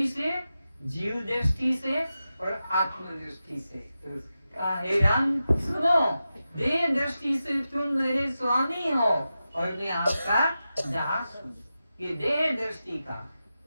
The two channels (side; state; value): both; inverted; correlation -0.92